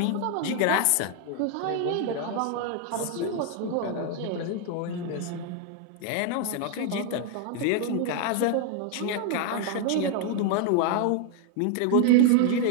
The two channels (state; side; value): different; both; correlation 0.00